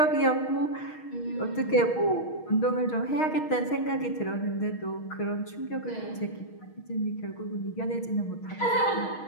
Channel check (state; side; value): late; right; 6.4 ms